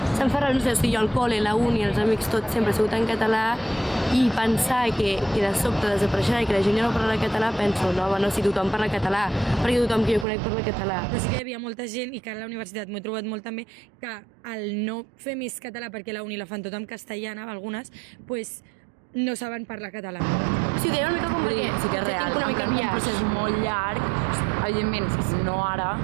Se'm fa raro, no sé, si jo al col·le, la uni, els amics, tot sempre ha sigut en català i pensar que de sobte desapareixerà i que la gent ja no parla català, penso, no, si tothom parla català, perquè tothom que jo conec parla català. Però sí que hi havia molta gent, i que a la universitat m'ho he trobat molt també, que al no fer més català, perquè la uni la fan tota en castellana, algunes, no saben parlar català. Sí, deia una mica com perquè sí que és real, un procés molt llarg, evidentment, no ara,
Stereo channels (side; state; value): left; drops out; at 10.2 s